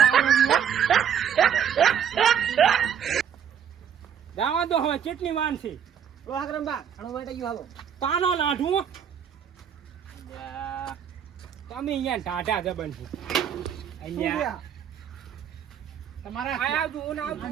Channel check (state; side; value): quieter; left; 8.4 dB